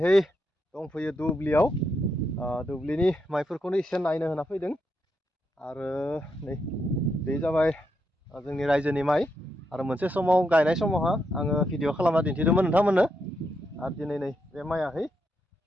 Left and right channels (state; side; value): normal; both; correlation 0.81